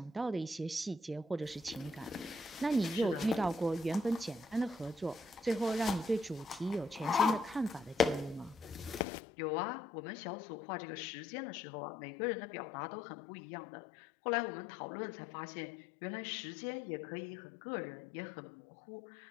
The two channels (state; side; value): drops out; right; at 9.1 s